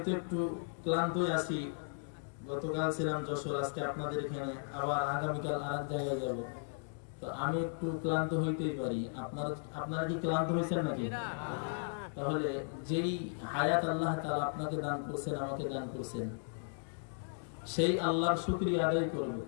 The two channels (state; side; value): silent; right; digital silence